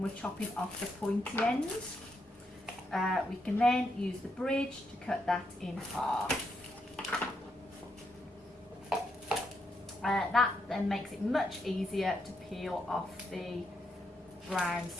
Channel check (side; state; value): both; normal; correlation 0.80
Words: chopping off the pointy end. We can then use the bridge to cut that in half. That then makes it much easier to peel off the brown